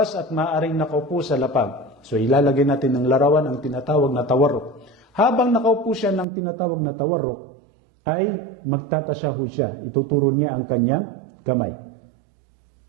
at maaaring nakaupo sa lapag. So ilalagay natin ng larawan ang tinatawag na tawarruk. Habang nakaupo siya ng tinatawag na tawarruk, ay magtatasyahud siya. Ituturo niya ang kanyang kamay.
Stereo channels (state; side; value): drops out; left; at 6.2 s